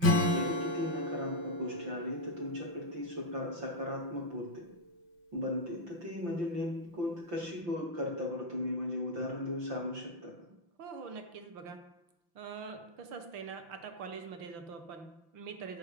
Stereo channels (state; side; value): late; left; 5.9 ms